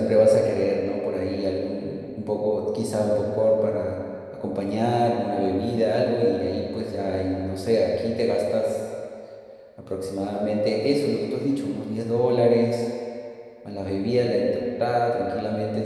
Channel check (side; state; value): both; identical; correlation 1.00